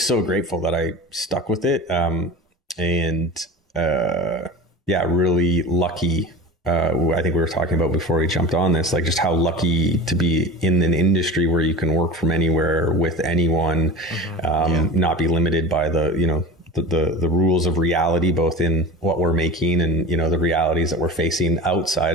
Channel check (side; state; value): both; normal; correlation 0.32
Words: so grateful that I stuck with it. Really lucky. I think we were talking about before we jumped on this, like just how lucky to be in an industry where you can work from anywhere with anyone, not be limited by the rules of reality, both in what we're making and, the realities that we're facing